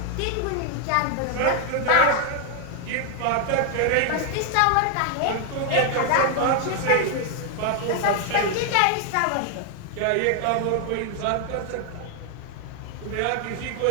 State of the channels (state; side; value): different; both; correlation 0.00